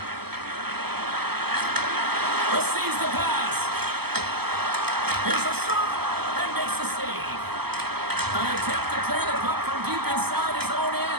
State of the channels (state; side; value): late; left; 0.96 ms